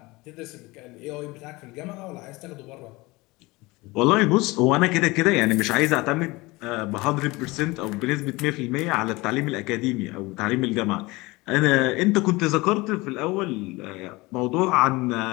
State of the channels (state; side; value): quieter; right; 22.5 dB